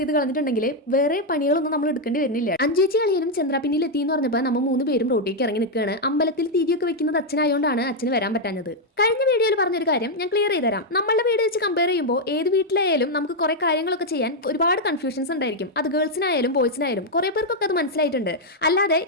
കളഞ്ഞിട്ടുണ്ടെങ്കിൽ വേറെ പണികളൊന്നും നമ്മൾ എടുക്കേണ്ടി വരുന്നില്ല. അഞ്ചേച്ചി അളിയനും ചന്ദ്രാപിന്നിൽ എത്തി എന്ന് പറഞ്ഞപ്പോൾ നമ്മൾ 3 പേരും റോട്ടിലേക്ക് ഇറങ്ങി നിൽക്കുകയാണ്. അമ്പലത്തിൽ തിരിയൊക്കെ വെക്കുന്നത് അച്ഛനായതുകൊണ്ടാണ് അച്ഛന് വരാൻ പറ്റാഞ്ഞത്. കഴിഞ്ഞ വീഡിയോയിൽ പറഞ്ഞൊരു കാര്യം ഞാൻ ക്ലിയർ ചെയ്ത് തരാം. നമ്മളുടെ വീട് വെച്ച് കമ്പയർ ചെയ്യുമ്പോൾ ഏത് വീട്ടിലായാലും നമുക്ക് കുറെ കാര്യങ്ങളൊക്കെ ചെയ്യാൻ ഒരുപാട് കൺഫ്യൂഷൻസ് ഉണ്ടായിരിക്കും. അത് ഗേൾസിനായാലും ബോയ്സിനായാലും കുറെ പേർക്കൊക്കെ അത് മനസ്സിലായിട്ടുണ്ട്. അല്ലാതെ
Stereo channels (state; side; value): normal; both; correlation 0.00